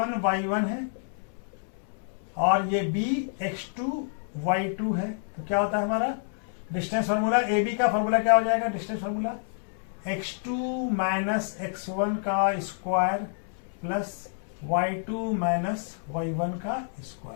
y1 है और ये b x2 y2 है, तो क्या होता है हमारा डिस्टेंस फार्मूला? ए बी का फार्मूला क्या हो जाएगा? Distance formula x2 minus x1 का square plus y2 minus y1 का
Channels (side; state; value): right; silent; 59 dB below the other